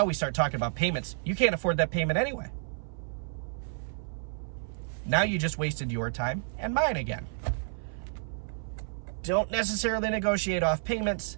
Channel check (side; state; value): left; silent; 58 dB below the other